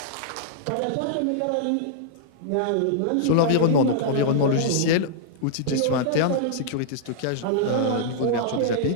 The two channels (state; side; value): different; both; correlation -0.02